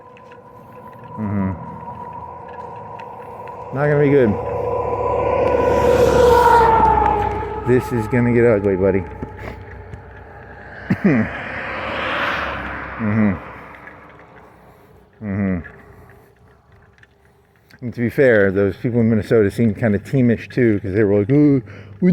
Not gonna be good. This is gonna get ugly, buddy. And to be fair, those people in Minnesota seemed kind of teamish too, because they were like, "Oh, we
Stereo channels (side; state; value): both; identical; correlation 1.00